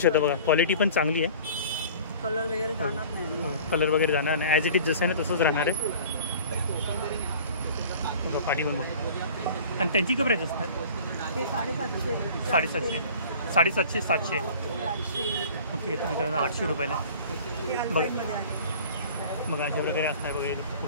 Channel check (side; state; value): both; inverted; correlation -0.45